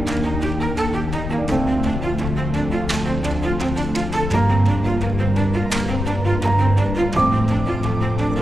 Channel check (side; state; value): left; noise; rumble, 5 dB below the sound